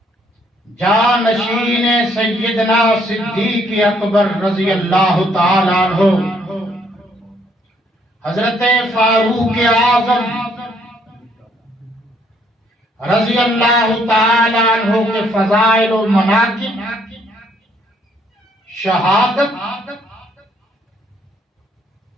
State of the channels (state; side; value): normal; both; correlation 0.67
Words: جانشین سیدنا صدیق اکبر رضی اللہ تعالی عنہ، حضرت فاروق اعظم رضی اللہ تعالی عنہ کے فضائل و مناقب، شہادت